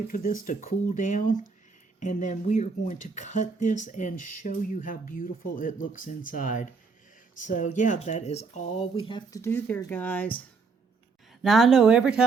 for this to cool down. And then we are going to cut this and show you how beautiful it looks inside. So yeah, that is all we have to do there, guys. Now, I know every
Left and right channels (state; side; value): quieter; left; 4.6 dB